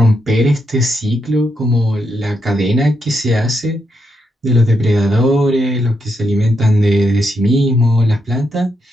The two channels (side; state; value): both; normal; correlation 0.81